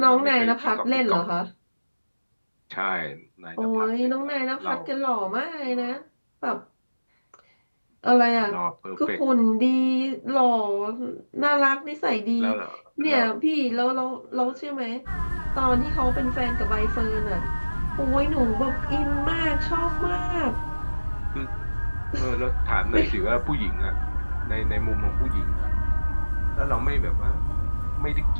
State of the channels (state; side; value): inverted; both; correlation -1.00